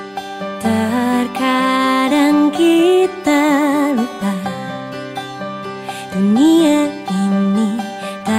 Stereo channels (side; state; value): both; identical; correlation 1.00